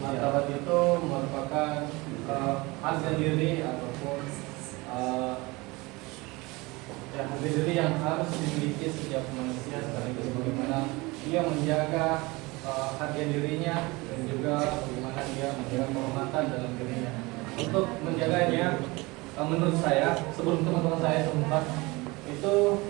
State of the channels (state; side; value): quieter; left; 23.6 dB